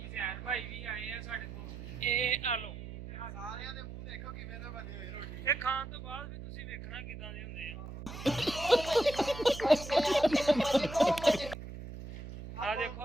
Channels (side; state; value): right; noise; hum, 10 dB below the sound